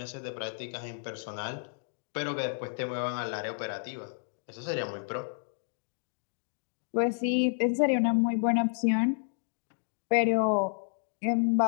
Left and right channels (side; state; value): right; silent; digital silence